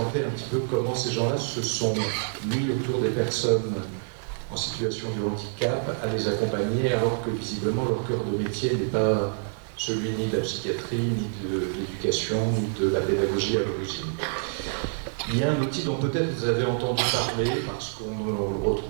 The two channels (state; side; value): silent; left; 59 dB below the other